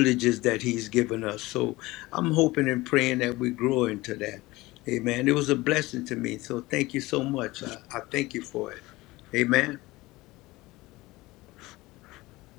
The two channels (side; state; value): right; quieter; 20.2 dB